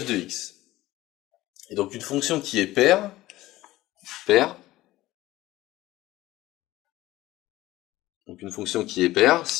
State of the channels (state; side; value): quieter; right; 16.8 dB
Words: de x. Et donc une fonction qui est paire, donc une fonction qui est paire